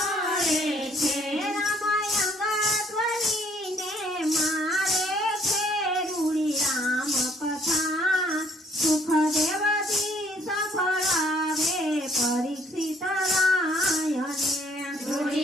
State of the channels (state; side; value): normal; both; correlation 0.63